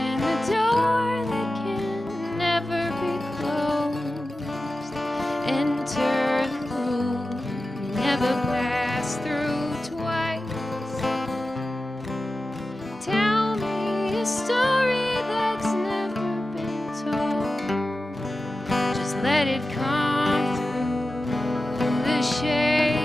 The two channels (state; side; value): normal; both; correlation 0.94